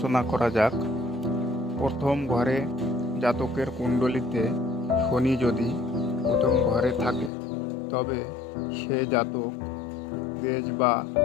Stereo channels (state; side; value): drops out; right; at 7.3 s